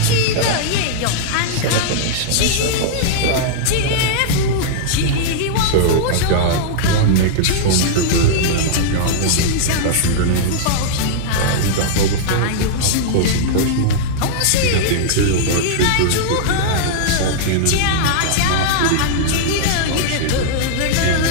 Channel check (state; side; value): different; both; correlation -0.02